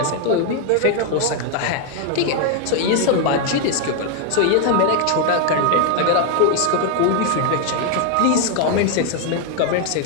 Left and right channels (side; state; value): both; different; correlation 0.00